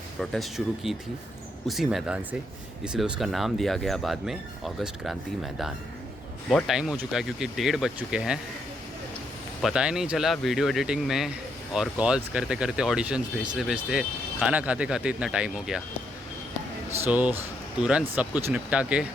प्रोटेस्ट शुरू की थी उसी मैदान से, इसलिए उसका नाम दिया गया बाद में अगस्त क्रांति मैदान। बहुत टाइम हो चुका है क्योंकि 1:30 बज चुके हैं। पता ही नहीं चला वीडियो एडिटिंग में और कॉल्स करते करते, ऑडिशंस भेजते भेजते, खाना खाते खाते इतना टाइम हो गया। सो तुरंत सब कुछ निपटा के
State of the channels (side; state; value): both; normal; correlation 0.76